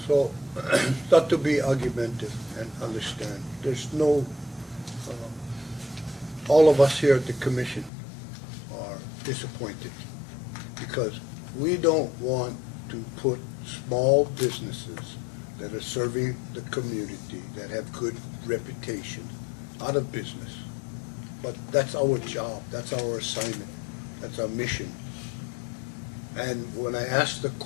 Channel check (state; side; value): drops out; right; at 7.9 s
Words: So, not to be argumentative and understand, there's no, all of us here at the commission are disappointed because we don't want to put small businesses that are serving the community, that have good reputation, out of business. But that's our job, that's our assignment, that's our mission. And when I asked the